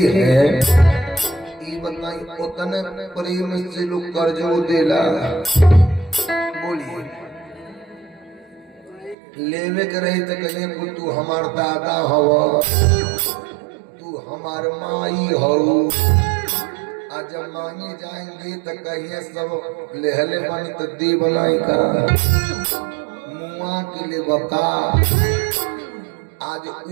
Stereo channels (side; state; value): left; drops out; at 9.2 s